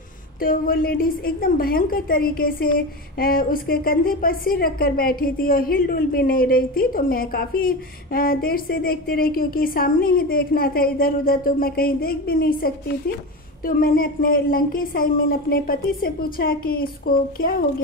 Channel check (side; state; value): both; normal; correlation 0.23